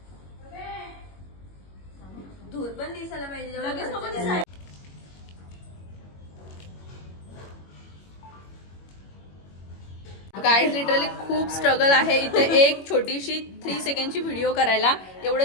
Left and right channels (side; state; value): right; late; 21 ms